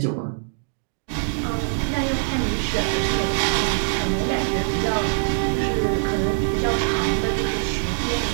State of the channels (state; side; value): silent; left; digital silence